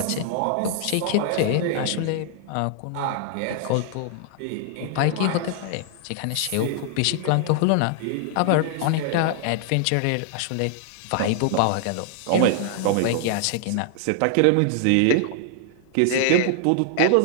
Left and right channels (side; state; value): both; different; correlation 0.00